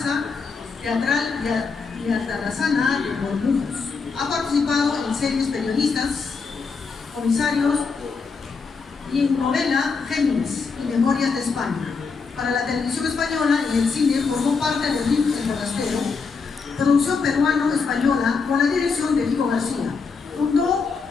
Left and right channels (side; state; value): right; quieter; 4.9 dB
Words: Teatral y Altarazana de Bormujos. Ha participado en series periodistas, comisarios y en novela Géminis y Memorias de España. Para la televisión española y el cine formó parte de RIM El Forastero, producción peruano-española con la dirección de Vico García. Fundó